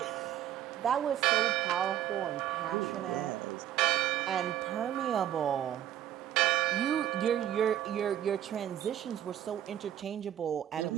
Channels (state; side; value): quieter; left; 11.5 dB